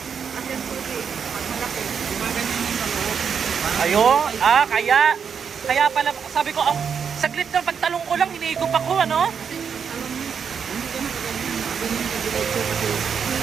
Yan po eh, pag malaki, gumaganyan yung dalawang. Ayun, kaya pala, sabi ko, saglit na pagtalong ko lang, hinihigop ako, ano? Kasi alam mo, hindi ka magaganyan ka diretso kasi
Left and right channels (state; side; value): quieter; left; 6.9 dB